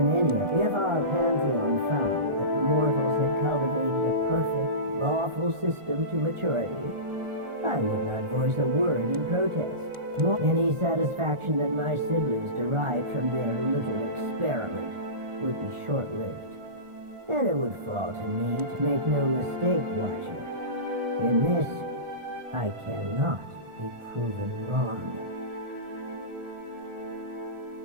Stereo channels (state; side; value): late; left; 1.4 ms